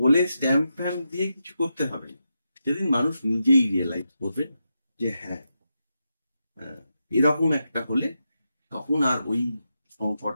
স্ট্যাম্প ফ্যাম্প দিয়ে কিছু করতে হবে, সেদিন মানুষ নিজেই রিয়েলাইজ করবে যে হ্যাঁ, এরকম একটা হলে তখন আর ওই সংকট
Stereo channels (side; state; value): both; inverted; correlation -0.87